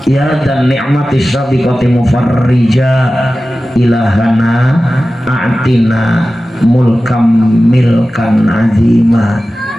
ya dan ni'mati sabiqati mufarrija ilahana a'tina mulkam milkan azima.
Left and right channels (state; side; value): normal; both; correlation 0.95